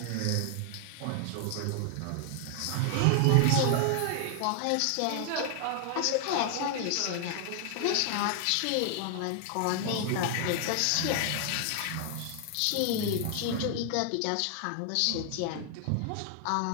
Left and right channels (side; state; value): both; different; correlation 0.00